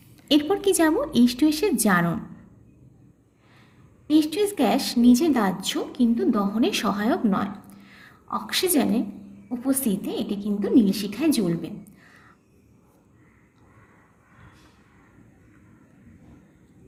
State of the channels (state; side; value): identical; both; correlation 1.00